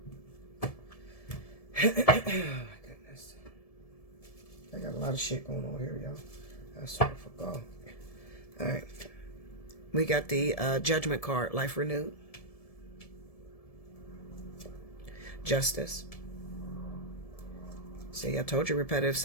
my goodness. I got a lot of shit going on here, y'all. I sort of forgot. Alright. We got the Judgment card. Life renewed. Justice. See, I told you repetitive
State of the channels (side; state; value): right; late; 1.7 ms